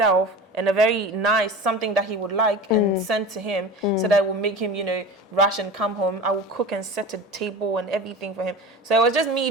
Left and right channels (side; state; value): both; normal; correlation 0.33